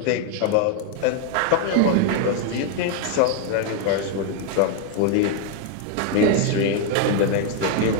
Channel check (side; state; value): both; different; correlation 0.01